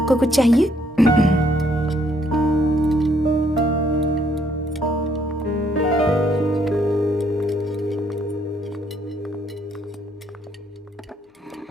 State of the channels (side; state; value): both; normal; correlation 0.69